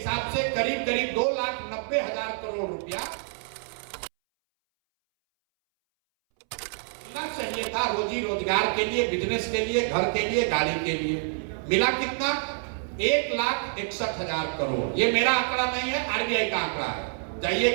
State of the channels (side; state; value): left; silent; 60 dB below the other